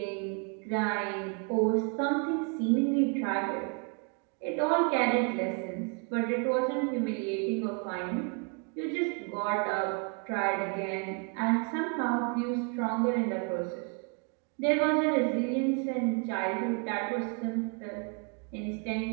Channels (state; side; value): quieter; left; 36.4 dB